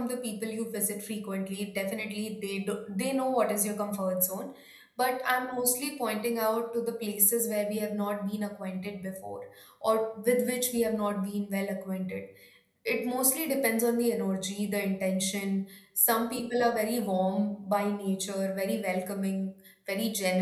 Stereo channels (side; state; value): both; identical; correlation 1.00